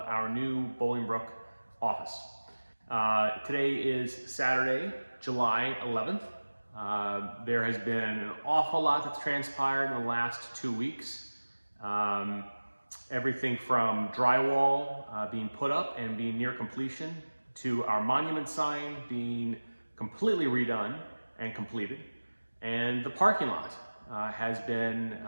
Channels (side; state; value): both; inverted; correlation -1.00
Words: our new Bolingbrook office. Today is Saturday, July 11th. There has been an awful lot that's transpired in the last 2 weeks. Everything from drywall being put up and being near completion to our monument sign being completely redone and completed, and the parking lot has been